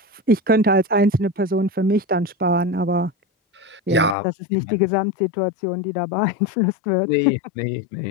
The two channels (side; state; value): right; drops out; at 4.2 s